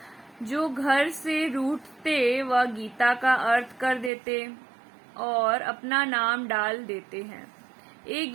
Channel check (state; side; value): drops out; left; at 4.1 s